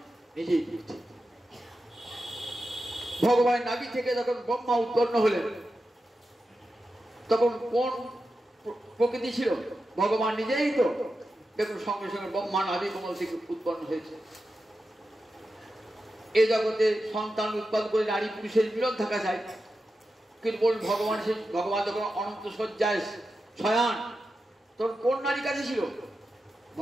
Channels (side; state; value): both; normal; correlation 0.90